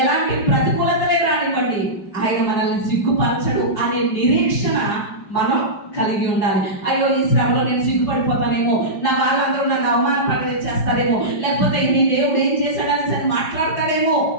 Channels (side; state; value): right; late; 5.2 ms